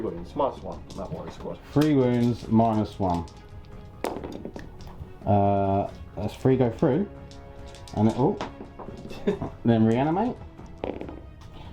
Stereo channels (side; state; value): both; identical; correlation 1.00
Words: -1 on that warrior squad. 3 wounds, -1. Let's 3 go through. And it, then reanimate.